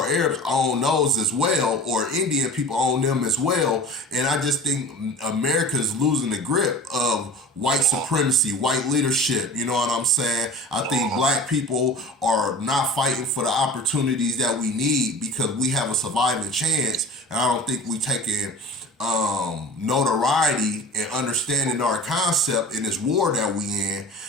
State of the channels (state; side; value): normal; both; correlation 0.38